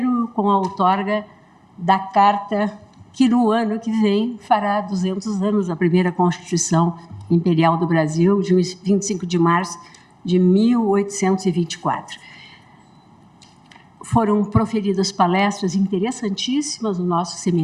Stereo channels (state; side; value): identical; both; correlation 1.00